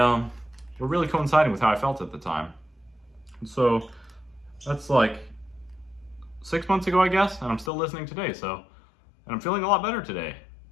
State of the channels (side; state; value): right; drops out; at 7.7 s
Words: really coinciding with how I felt at the time. And so that's like 6 months ago, I guess, and I'm still listening today. So, and I'm feeling a lot better today.